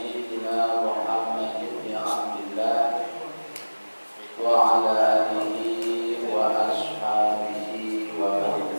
Muhammad ibn Abdillah wa ala alihi wa ashabihi wa man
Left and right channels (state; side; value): inverted; both; correlation -1.00